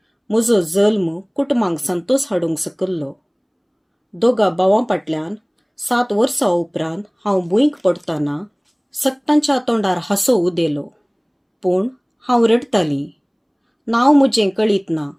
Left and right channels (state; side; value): identical; both; correlation 1.00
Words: म्हजो जल्म कुटुंबांक संतोष हाडूंक सकल्लो. दोगा भावां फाटल्यान 7 वर्सां उपरांत हांव भुंयक पडटना सक्तांच्या तोंडार हांसो उदेलो. पूण हांव रडटालीं. नांव म्हजें कळीत ना,